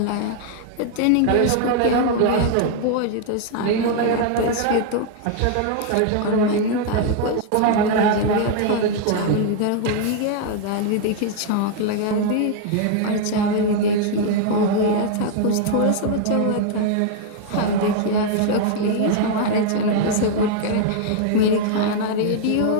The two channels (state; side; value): different; both; correlation 0.00